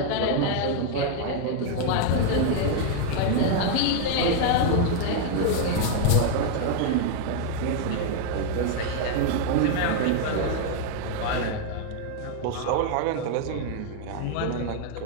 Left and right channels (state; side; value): different; both; correlation 0.00